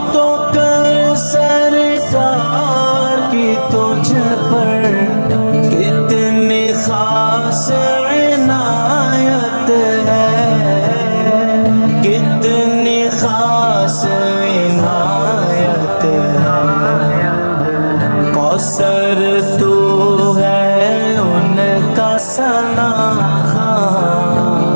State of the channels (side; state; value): both; inverted; correlation -1.00